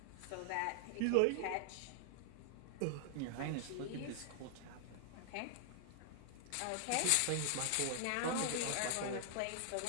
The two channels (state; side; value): different; both; correlation 0.00